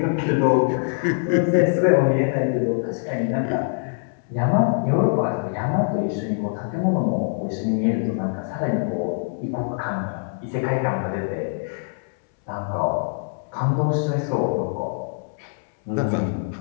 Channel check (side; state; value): right; silent; 63 dB below the other